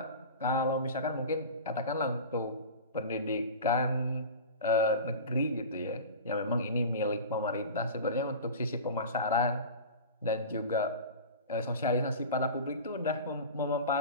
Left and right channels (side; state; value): both; inverted; correlation -0.33